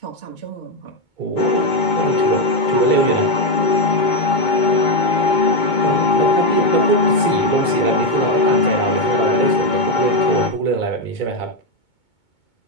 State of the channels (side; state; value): right; late; 2.2 ms